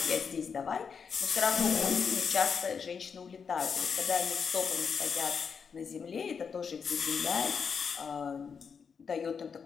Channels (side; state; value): right; quieter; 6.2 dB